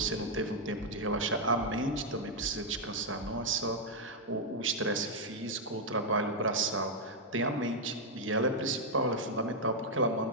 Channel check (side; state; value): both; normal; correlation -0.02